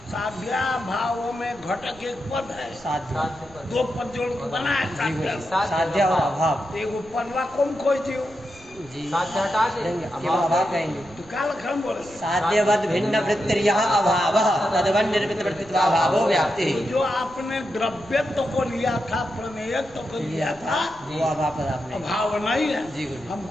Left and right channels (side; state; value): right; noise; rumble, 23 dB below the sound